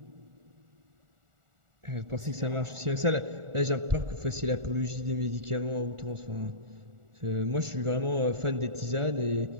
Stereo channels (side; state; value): left; late; 1.4 ms